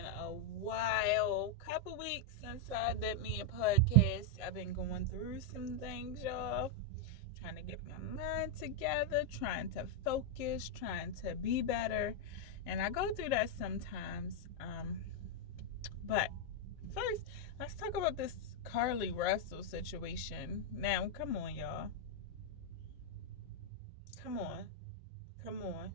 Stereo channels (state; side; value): normal; both; correlation -0.01